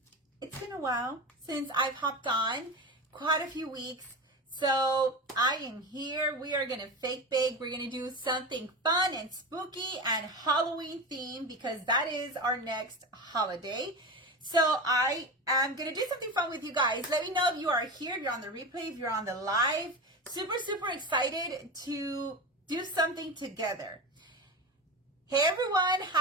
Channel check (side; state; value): both; normal; correlation 0.24